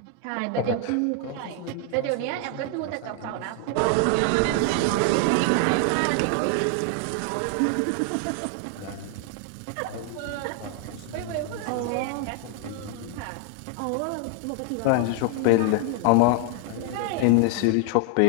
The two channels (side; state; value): both; different; correlation 0.00